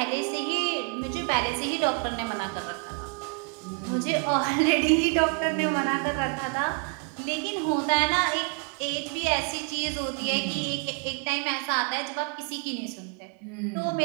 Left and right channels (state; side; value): quieter; left; 37.9 dB